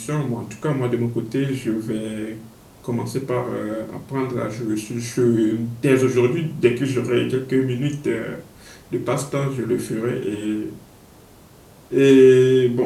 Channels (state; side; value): identical; both; correlation 1.00